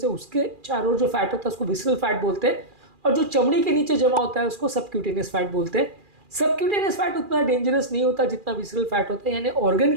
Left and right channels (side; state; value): left; late; 2.4 ms